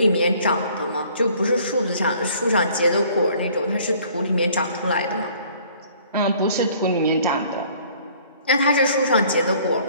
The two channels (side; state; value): both; inverted; correlation -0.56